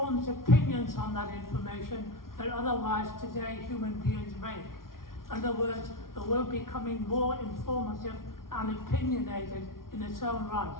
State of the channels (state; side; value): late; right; 0.92 ms